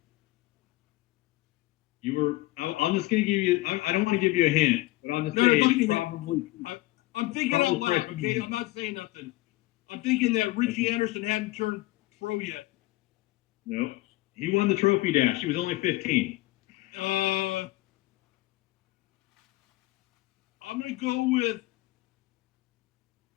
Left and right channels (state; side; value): quieter; right; 19.2 dB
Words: I'm just going to give you, I don't want to give you a hint, but I'll just No, say don't give me it's a hint. probably. I'm thinking out Probably loud, freshman okay? year. I'm not saying nothing. I'm thinking that Richie Anderson hadn't turned pro yet. No, he won the trophy dash. He was only 15. I'm going to go with